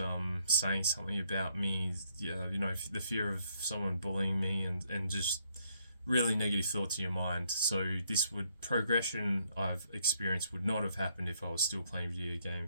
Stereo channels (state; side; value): inverted; both; correlation -0.71